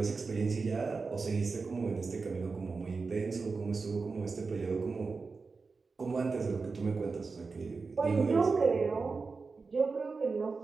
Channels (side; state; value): left; quieter; 4.4 dB